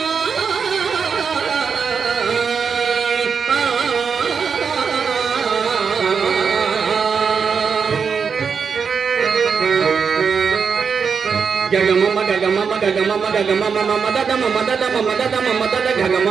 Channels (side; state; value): left; quieter; 6.1 dB